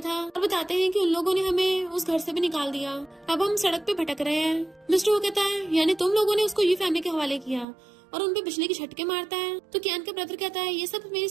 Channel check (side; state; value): left; drops out; at 7.7 s